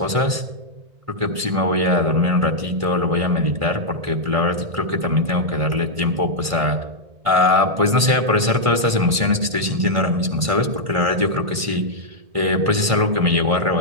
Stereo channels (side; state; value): left; late; 1.5 ms